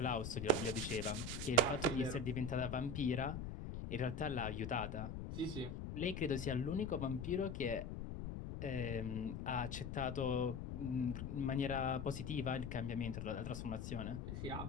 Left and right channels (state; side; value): noise; left; rumble, 5 dB below the sound